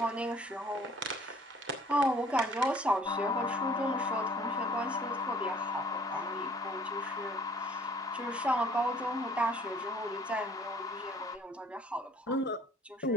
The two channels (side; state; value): both; normal; correlation 0.55